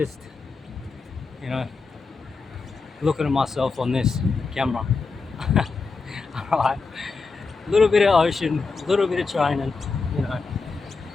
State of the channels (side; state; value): right; quieter; 4.4 dB